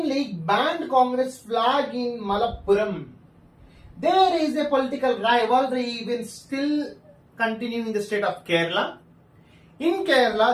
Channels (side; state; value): both; identical; correlation 1.00